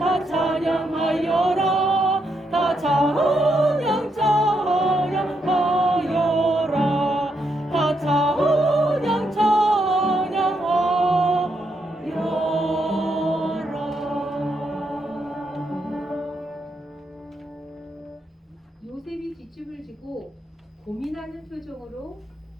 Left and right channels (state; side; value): normal; both; correlation 0.80